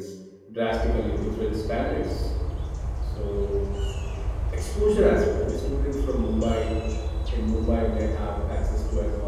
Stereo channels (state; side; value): identical; both; correlation 1.00